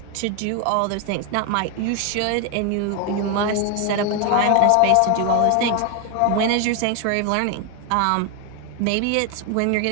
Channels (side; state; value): both; different; correlation 0.01